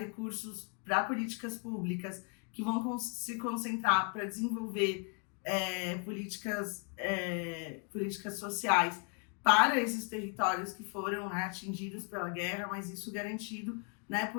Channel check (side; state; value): right; quieter; 37.6 dB